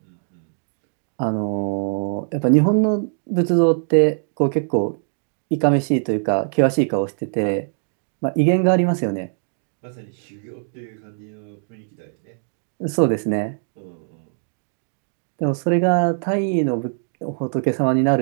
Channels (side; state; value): left; silent; digital silence